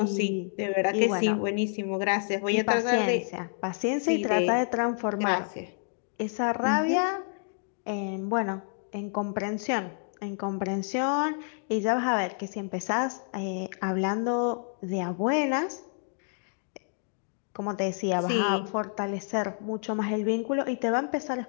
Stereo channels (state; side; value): silent; right; 59 dB below the other